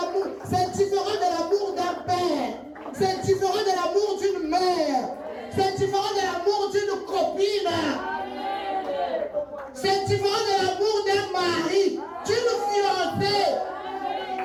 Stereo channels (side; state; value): both; identical; correlation 1.00